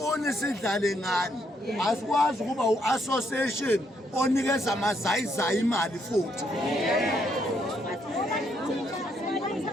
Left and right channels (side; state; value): both; normal; correlation 0.73